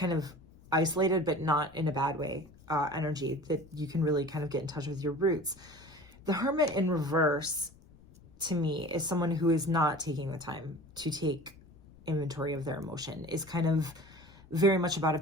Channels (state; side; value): noise; left; rumble, 25 dB below the sound